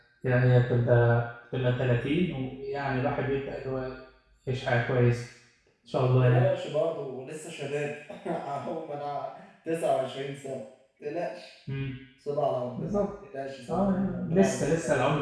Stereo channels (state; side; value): identical; both; correlation 1.00